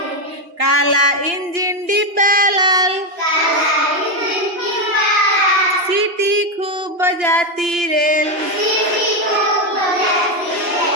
काला इंजन डिब्बा लाल सीटी खूब बजाती रेल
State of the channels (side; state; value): left; late; 2.9 ms